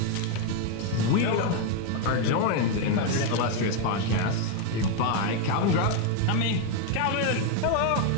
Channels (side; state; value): both; different; correlation 0.01